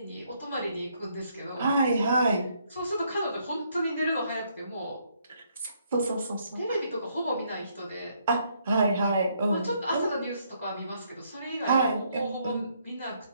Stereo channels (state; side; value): inverted; both; correlation -0.71